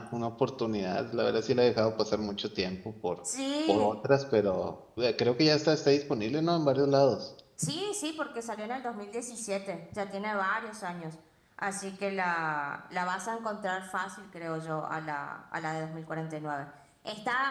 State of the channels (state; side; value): identical; both; correlation 1.00